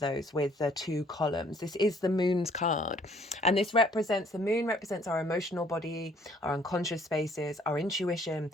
those with the two columns. This is the Moon's card, and this represents, the Moon represents our emotional body, our unconscious spaces, our intuition,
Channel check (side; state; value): both; normal; correlation 0.61